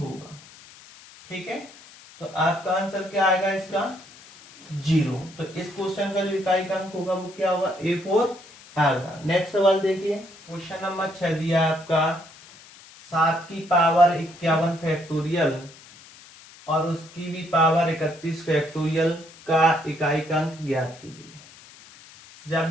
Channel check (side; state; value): left; noise; hiss, 21 dB below the sound